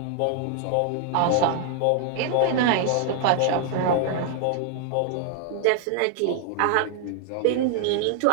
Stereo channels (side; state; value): both; different; correlation 0.00